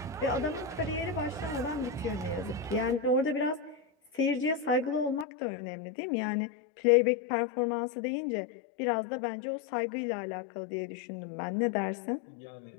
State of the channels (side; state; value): right; drops out; at 5.2 s